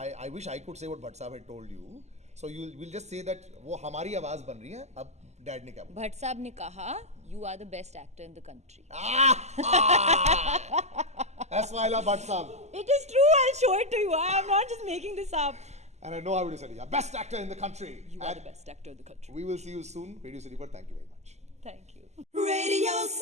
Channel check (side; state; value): left; late; 0.33 ms